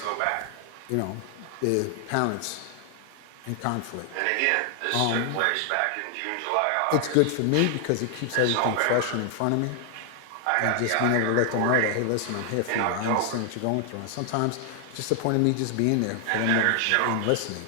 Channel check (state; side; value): different; both; correlation 0.00